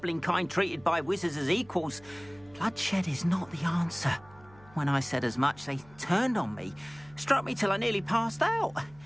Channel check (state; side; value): noise; right; hum, 25 dB below the sound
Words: kind treated by wizards as equals, bloodshed is not the answer. When I said as much, they turned on me, struck me till I nearly passed out.